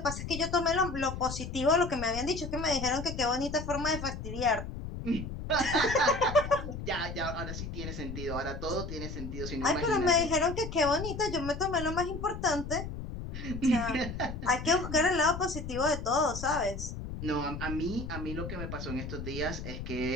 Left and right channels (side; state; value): left; noise; rumble, 7 dB below the sound